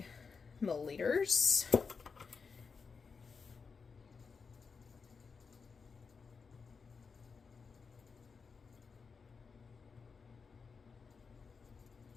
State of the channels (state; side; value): quieter; right; 5.2 dB